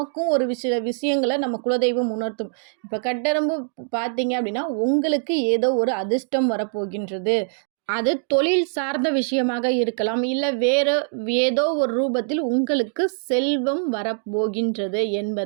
ஒரு சில விஷயங்களை நம்ம குலதெய்வம் உணர்த்தும். இப்போ கட்டெரும்பு பார்த்தீங்க அப்படின்னா உங்களுக்கு ஏதோ ஒரு அதிர்ஷ்டம் வரப்போகின்றது. அது தொழில் சார்ந்த விஷயமாக இருக்கலாம், இல்லை வேறு ஏதோ ஒரு ரூபத்தில் உங்களுக்கு செல்வம் வரப்போகின்றது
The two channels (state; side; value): silent; left; digital silence